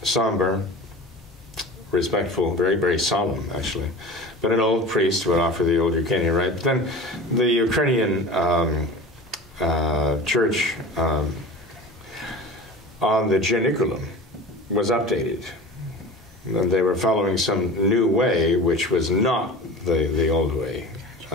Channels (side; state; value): both; normal; correlation 0.36